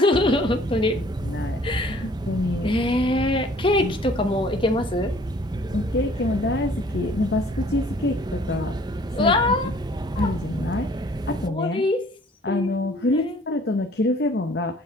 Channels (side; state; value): both; normal; correlation 0.55